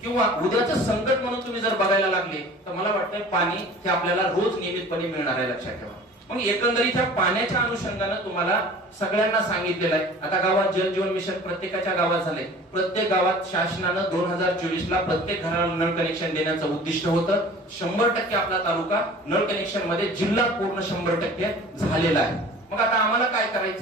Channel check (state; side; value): normal; both; correlation 0.44